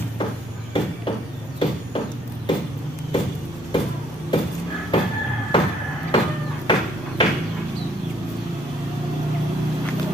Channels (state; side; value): normal; both; correlation 0.67